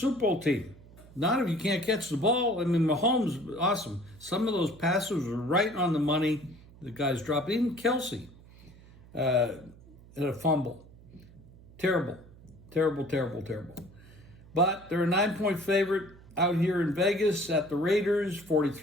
Bowl team. Not if you can't catch the ball. I mean, Mahomes, awesome. Some of those passes were right on the money. The guys dropped. Even Kelsey had a fumble. Terrible. But they're a 9-point favorite out here in Vegas at the Raiders.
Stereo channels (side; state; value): right; noise; hum, 22 dB below the sound